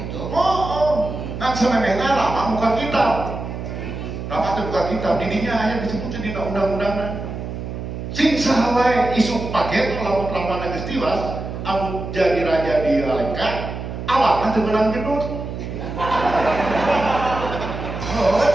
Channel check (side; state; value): right; noise; hum, 7 dB below the sound